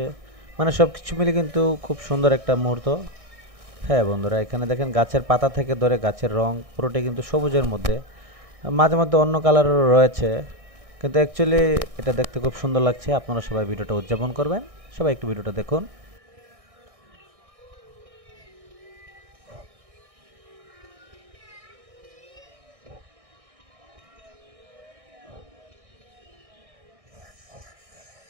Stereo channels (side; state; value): left; late; 1.6 ms